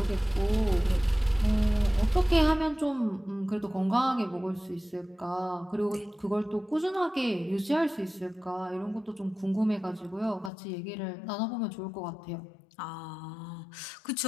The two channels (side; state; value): right; drops out; at 10.5 s